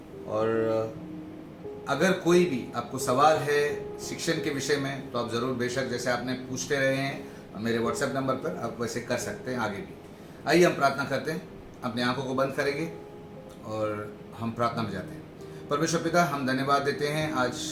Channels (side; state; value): both; identical; correlation 1.00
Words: और अगर कोई भी आपको सवाल है शिक्षण के विषय में तो आप ज़रूर, बेशक जैसे आपने पूछते रहे हैं मेरे व्हाट्सएप नंबर पर, आप वैसे कर सकते हैं आगे भी। आइए हम प्रार्थना करते हैं, अपनी आंखों को बंद करेंगे और हम प्रार्थना में जाते हैं। परमेश्वर पिता, हम धन्यवाद देते हैं आज